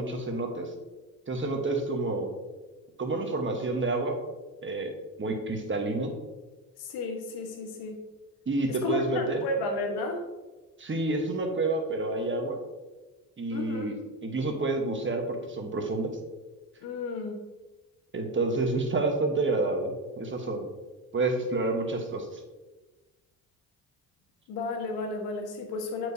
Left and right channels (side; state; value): both; normal; correlation 0.16